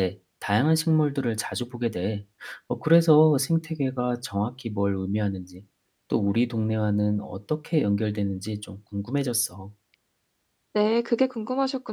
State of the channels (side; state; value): both; identical; correlation 1.00